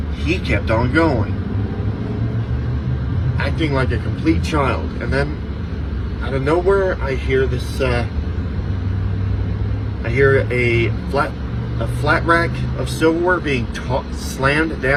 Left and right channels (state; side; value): identical; both; correlation 1.00